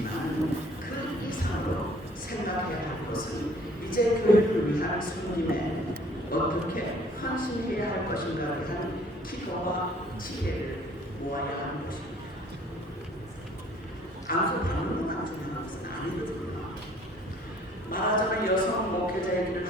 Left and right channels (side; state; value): both; normal; correlation 0.56